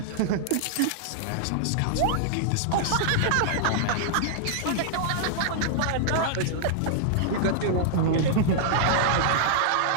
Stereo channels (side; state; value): both; different; correlation -0.01